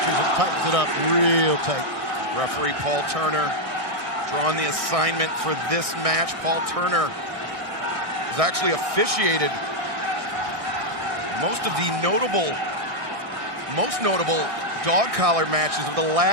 and tightens it up real tight. Referee Paul Turner drawing the assignment for this match. Paul Turner has actually officiated most of the most notable dog collar matches of the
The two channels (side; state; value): left; late; 1.6 ms